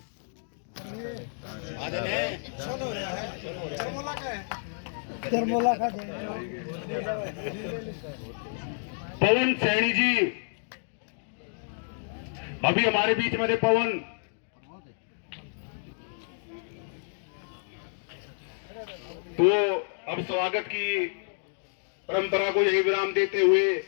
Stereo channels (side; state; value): right; silent; digital silence